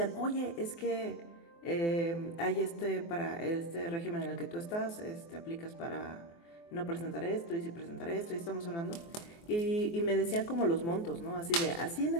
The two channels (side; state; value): right; late; 24 ms